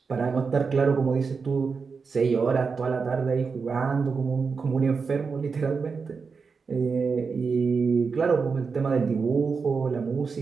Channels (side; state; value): left; quieter; 5.1 dB